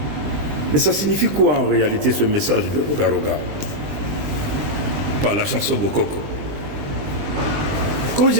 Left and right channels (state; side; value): late; left; 20 ms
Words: Mais ça signifie quoi en réalité ce message de Roga Roga par la chanson Bokoko? Quand